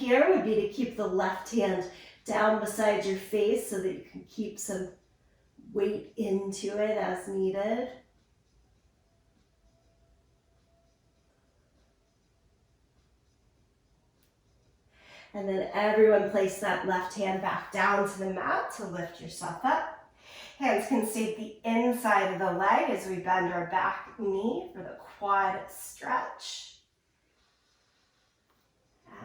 would be to keep the left hand down beside your face so that you can keep some weight into it as needed. And then everyone place that left hand back down to the mat to lift yourself up. Hands can stay at the inside of the leg as we bend our back knee for the quad stretch.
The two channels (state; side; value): identical; both; correlation 1.00